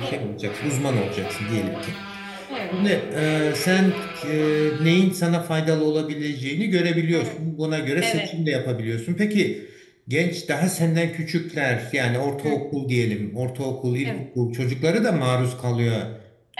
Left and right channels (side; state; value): both; identical; correlation 1.00